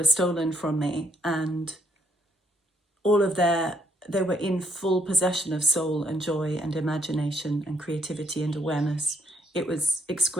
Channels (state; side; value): normal; both; correlation 0.71